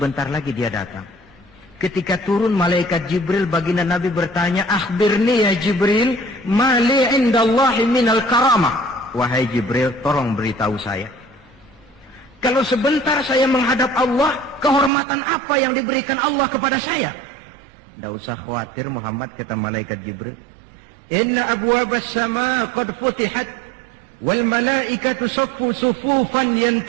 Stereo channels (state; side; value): drops out; left; at 14.9 s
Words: lagi dia datang. Ketika turun malaikat Jibril, baginda Nabi bertanya, akhbirni ya Jibril, mali indallahi minal karamah. Wahai Jibril, tolong beritahu saya. Kalau sebentar saya menghadap Allah, kehormatan apa yang diberikan Allah kepada saya? Tidak usah khawatir Muhammad, kata malaikat Jibril. Inna abwabas sama qad futihat, wal malaikatu saffu sufufan